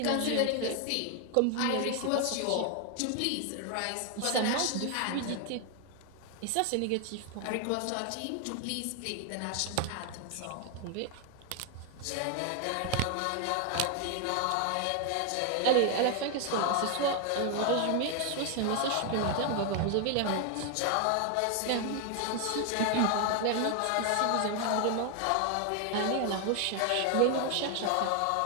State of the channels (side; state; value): both; different; correlation 0.00